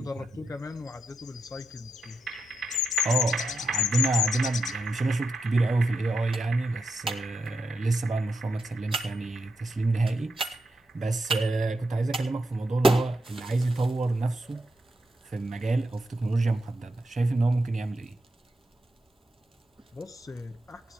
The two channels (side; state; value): both; normal; correlation 0.85